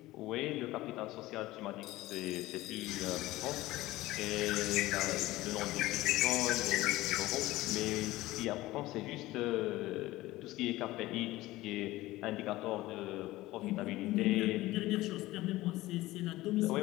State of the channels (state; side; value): quieter; right; 17.8 dB